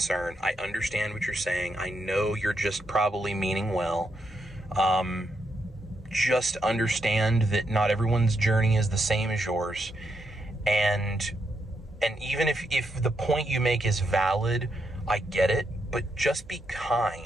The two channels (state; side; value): normal; both; correlation 0.81